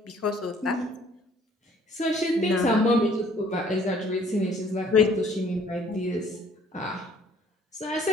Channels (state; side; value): normal; both; correlation 0.59